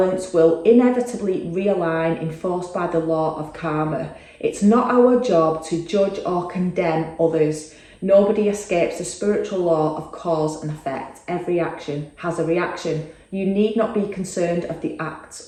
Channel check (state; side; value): identical; both; correlation 1.00